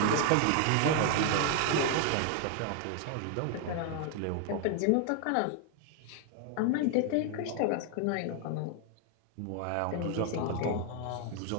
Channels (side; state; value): both; different; correlation 0.00